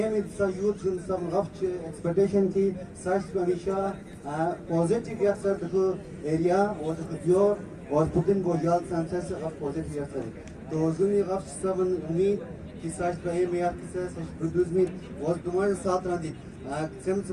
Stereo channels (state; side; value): identical; both; correlation 1.00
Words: में सा यूथ जिन सब गफ्ट एक्सपेक्टेशन की सर्च को हमेशा पॉजिटिव या सर देखो एरिया और देखो दियोर और पुतिन बोझाल सांसद से गफ्ट पॉजिटिव या सर तो जुनी गफ्ट सब उम्मीद कि सर्च पे में या किसे सर्च प्रोड्यूस में और तुम्हारे साथ रहती Sem